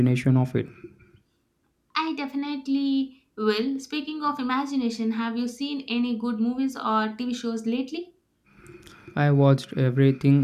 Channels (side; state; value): both; identical; correlation 1.00